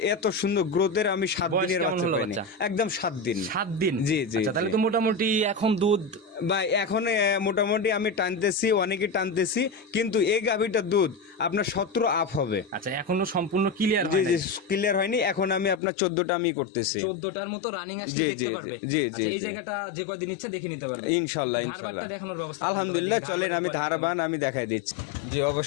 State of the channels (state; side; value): drops out; right; at 15.8 s